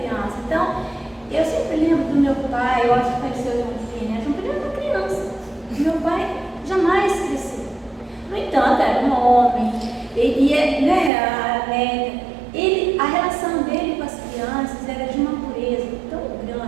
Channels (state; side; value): drops out; left; at 11.1 s